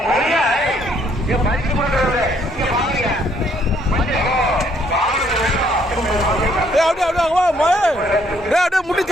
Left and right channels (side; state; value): both; normal; correlation 0.67